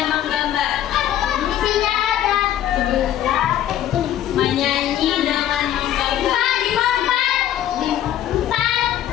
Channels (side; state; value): right; quieter; 11.7 dB